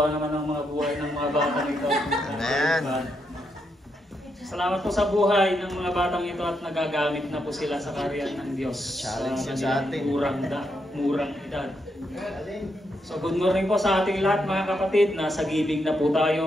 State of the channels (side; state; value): both; normal; correlation 0.81